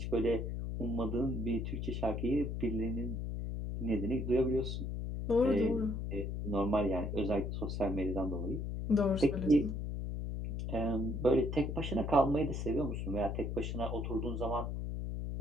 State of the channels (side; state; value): left; noise; hum, 3 dB below the sound